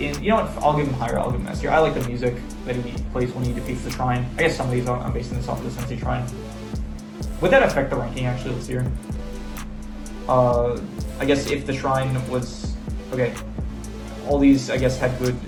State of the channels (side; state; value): both; identical; correlation 1.00